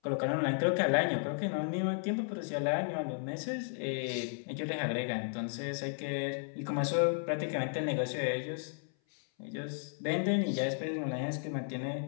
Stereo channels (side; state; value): right; silent; 55 dB below the other